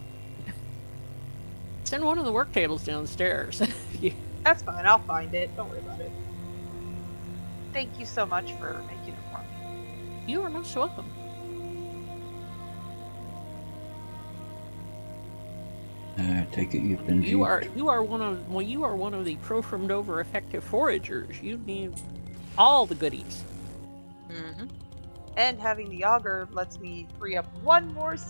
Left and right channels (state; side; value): inverted; both; correlation -1.00